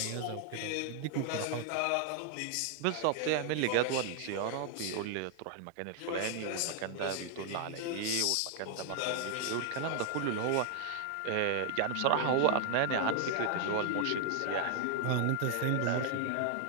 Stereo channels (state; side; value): different; both; correlation 0.00